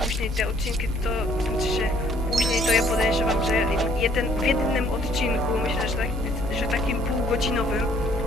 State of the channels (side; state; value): both; normal; correlation 0.61